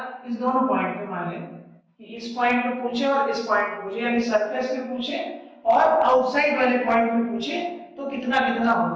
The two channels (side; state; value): both; identical; correlation 1.00